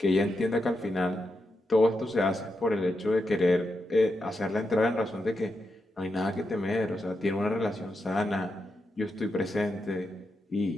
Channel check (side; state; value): both; normal; correlation 0.85